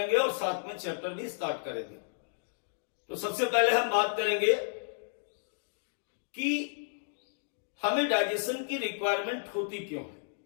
और साथ में चैप्टर भी स्टार्ट करेंगे। तो सबसे पहले हम बात करेंगे कि हमें डाइजेशन की रिक्वायरमेंट होती क्यों है।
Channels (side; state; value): right; silent; digital silence